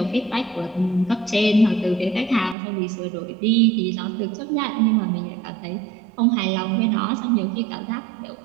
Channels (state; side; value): drops out; left; at 2.6 s